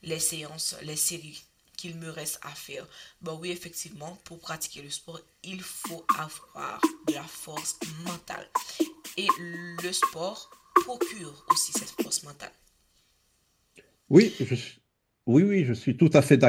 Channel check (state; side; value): identical; both; correlation 1.00